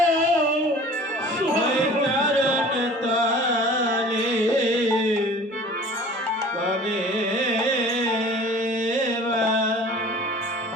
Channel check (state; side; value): normal; both; correlation 0.45